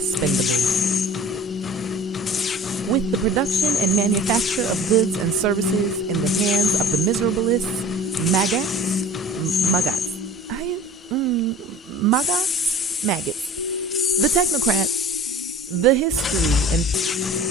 With the production and manufacture of goods and services in the hands of the miserabilists, maggots, the technocrats, the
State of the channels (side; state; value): both; normal; correlation 0.43